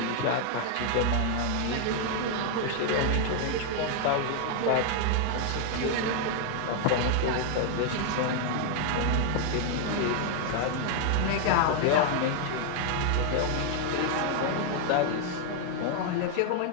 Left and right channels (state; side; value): different; both; correlation 0.00